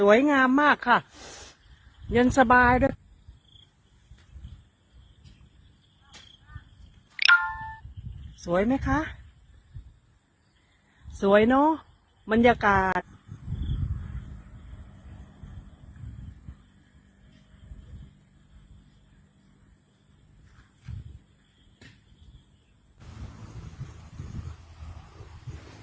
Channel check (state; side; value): identical; both; correlation 1.00